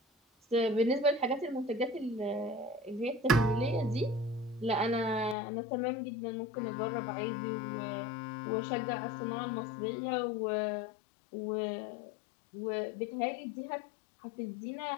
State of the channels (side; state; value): right; drops out; at 5.4 s